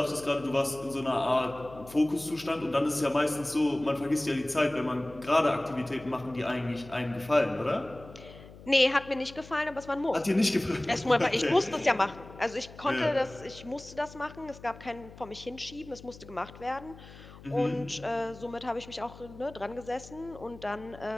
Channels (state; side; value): noise; left; hum, 18 dB below the sound